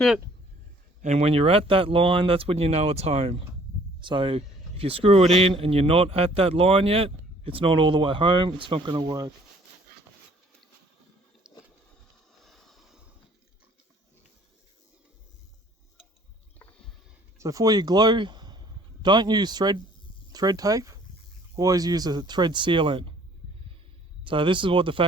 and when you're at that line, that's when you know it's home. So if you screw it in and you're not at that line yet, it's not all the way home, it's not going to work. So for your glue, don't use thread tape, always use a thread sealant. So this is what the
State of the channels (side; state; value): both; normal; correlation 0.57